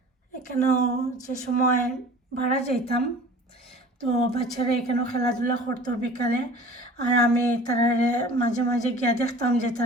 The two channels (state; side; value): normal; both; correlation 0.44